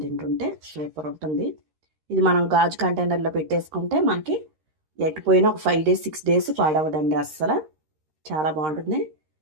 తింటుంటే సూపర్ ఉంటుంది. ఇది మనం గాజు కంటైనర్లో పెట్టేసుకుంటే మనకి ఎట్టిపోయినా ఒక 5 days 6 days పాడవదండి అస్సలు. చాలా బాగుంటుంది.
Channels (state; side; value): late; left; 13 ms